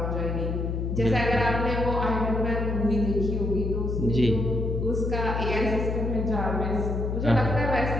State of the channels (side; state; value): left; noise; hum, 1 dB below the sound